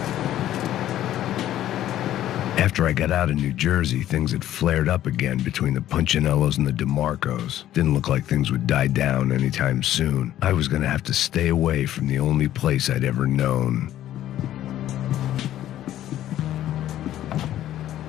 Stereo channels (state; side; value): quieter; right; 12.6 dB